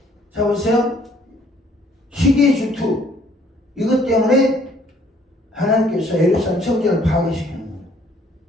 자, 보세요. 시기의 질투. 이것 때문에 하나님께서 예루살렘 성전을 파괴시키는 거예요.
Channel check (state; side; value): normal; both; correlation 0.61